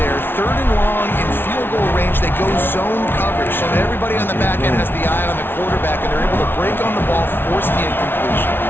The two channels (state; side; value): late; right; 0.11 ms